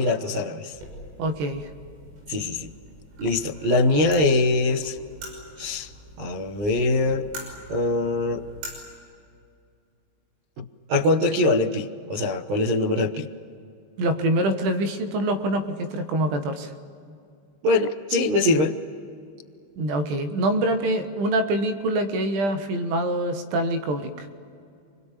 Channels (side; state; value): left; late; 20 ms